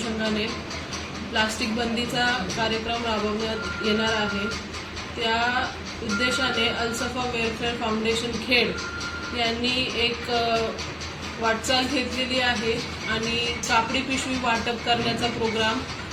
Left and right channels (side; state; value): both; identical; correlation 1.00